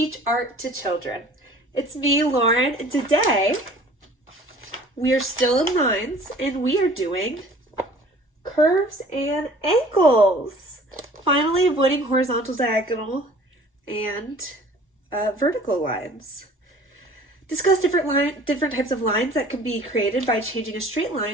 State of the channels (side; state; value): both; normal; correlation 0.49